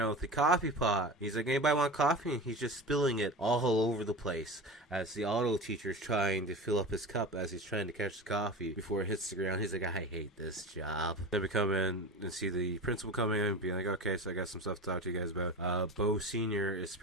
with the coffee pot. He's like, anybody want coffee? And he's just spilling it all over the place as the auto teacher's trying to fill up his cup as he's trying to catch the coffee before it hits the ground. He's like, I hate this job. Then we come in and see the principal coming in and being like, okay, so I got some stuff to talk to you guys about. Bo Sr. is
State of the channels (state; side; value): normal; both; correlation 0.30